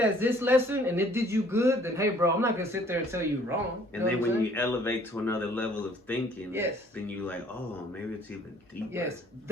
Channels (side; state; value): both; normal; correlation 0.58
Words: this lesson and it did you good, then hey, bro, I'm not gonna sit there and tell you wrong. And then when you elevate to another level of thinking, yes, then you like, oh, maybe it's even deeper. Yes,